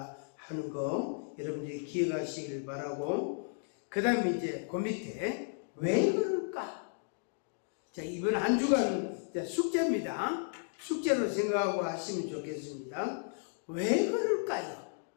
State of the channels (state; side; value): silent; right; digital silence